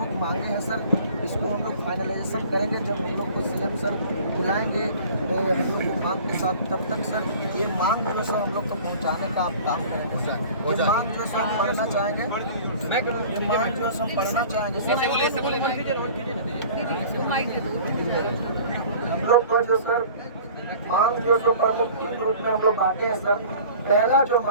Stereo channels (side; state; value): both; inverted; correlation -0.45